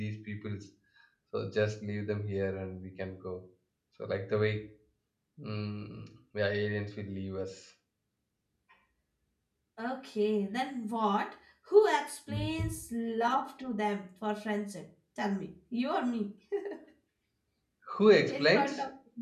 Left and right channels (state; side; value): identical; both; correlation 1.00